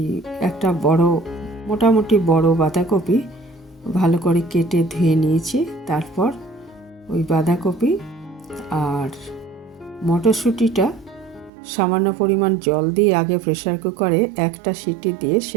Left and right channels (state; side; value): drops out; left; at 11.5 s